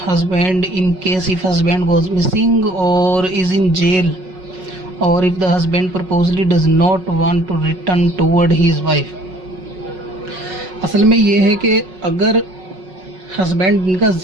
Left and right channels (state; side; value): late; left; 5.4 ms